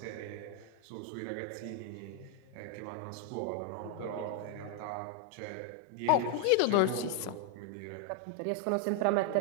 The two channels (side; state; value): both; different; correlation 0.00